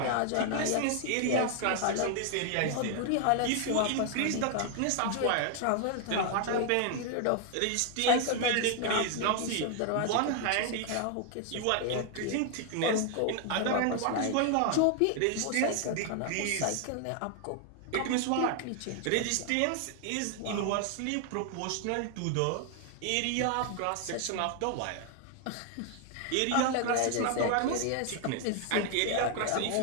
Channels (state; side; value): different; both; correlation 0.00